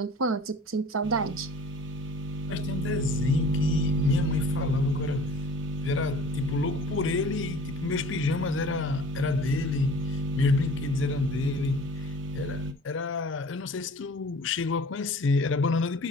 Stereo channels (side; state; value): both; normal; correlation 0.45